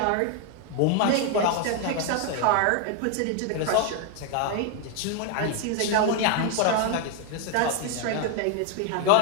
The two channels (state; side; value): different; both; correlation 0.00